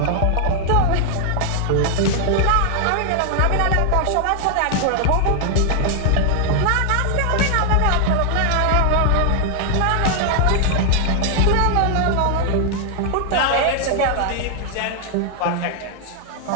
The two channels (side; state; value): both; different; correlation 0.00